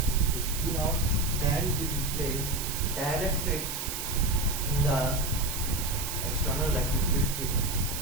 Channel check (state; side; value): noise; right; hiss, 5 dB below the sound